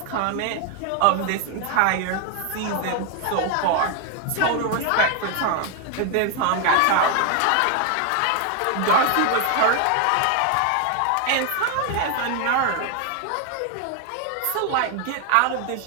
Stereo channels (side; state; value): both; different; correlation 0.01